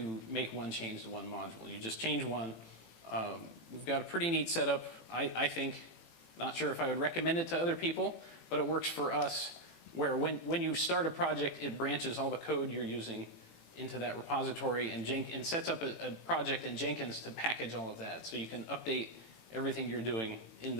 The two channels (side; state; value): right; late; 18 ms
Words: make one change to one module. You just change one. We've got a pretty neat setup, I think. Not sure if I would recommend it to other people, but it works for us, where when you start a project, it branches all the code you're using into that repository and sets up a project in Jenkins to package all of that. So you can update everything you're doing in